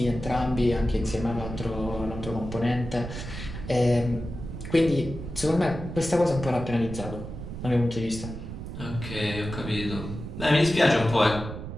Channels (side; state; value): right; noise; rumble, 9 dB below the sound